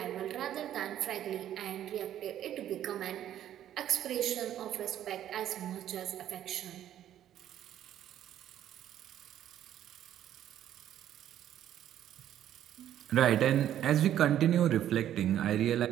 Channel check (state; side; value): quieter; left; 11.3 dB